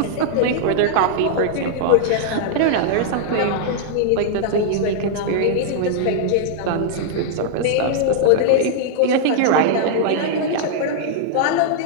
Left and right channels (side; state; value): both; different; correlation -0.02